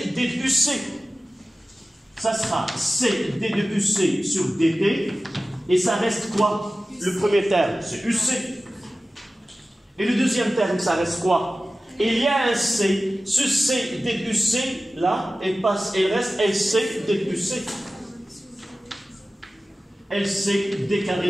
D de UC. Ça sera C, D de UC sur DT, et ça reste quoi? Le premier terme, c'est UC. Et le deuxième terme, ça reste quoi? Il y a un C. Ce C D de UC, là, il reste LC D de UC. LC D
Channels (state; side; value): normal; both; correlation 0.95